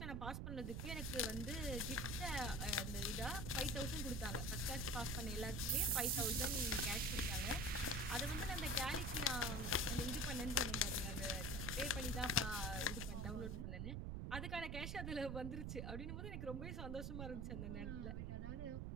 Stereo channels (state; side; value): noise; right; rumble, 3 dB below the sound